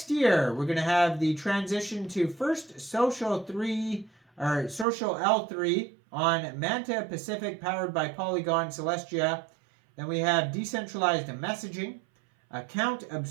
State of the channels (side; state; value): left; drops out; at 4.9 s